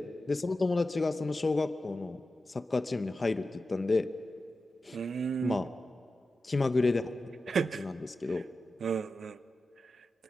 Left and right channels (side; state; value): both; normal; correlation 0.92